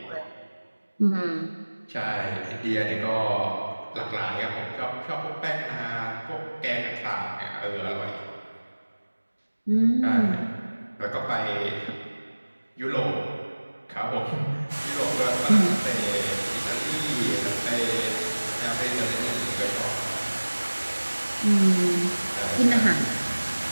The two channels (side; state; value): both; inverted; correlation -1.00